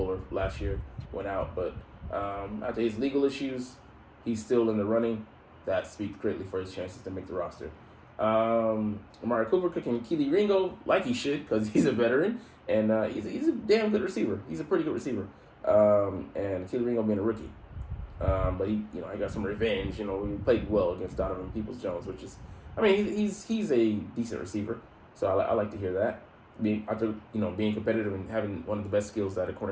last year, went out. But after his legal issues, he's still in the running. That speaks greatly for his chances to make the roster. Amari Cooper cooking Keely Ringo like he should, because he's a veteran, and he's a damn good receiver. He's a pretty good receiver. And Keely Ringo being a rookie. But he got some revenge. He played well against Donovan Peoples-Jones, which is, he's a decent receiver. So I like to hear that. Being competitive and having one of the best skills that a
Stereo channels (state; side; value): identical; both; correlation 1.00